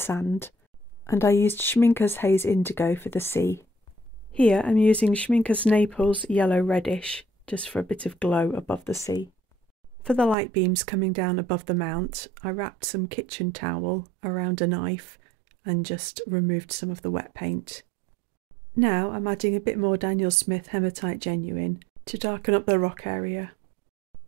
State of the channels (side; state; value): left; drops out; at 10.4 s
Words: and I used Schmincke's Haze Indigo for the sea. Here I'm using Schmincke's Naples Yellow Reddish, just for a bit of glow above the sea. For the light beams coming down above the mount, I wrapped some kitchen towel around a knife and just removed some of the wet paint. Now I'm adding a bit more Daniel Smith Hematite Genuine to darken up the rock area.